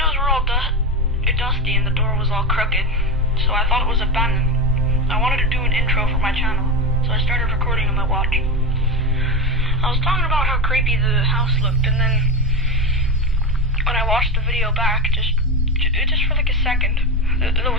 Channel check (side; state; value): both; normal; correlation 0.17